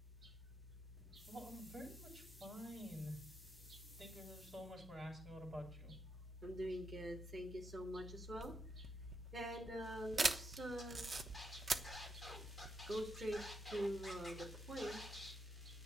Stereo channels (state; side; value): normal; both; correlation 0.83